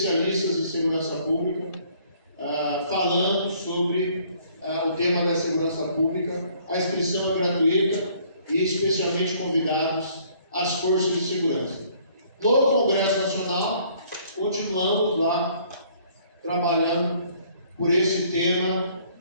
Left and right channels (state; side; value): inverted; both; correlation -0.60